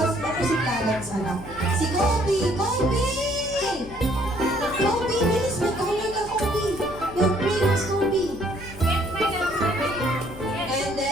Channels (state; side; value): noise; left; hum, 16 dB below the sound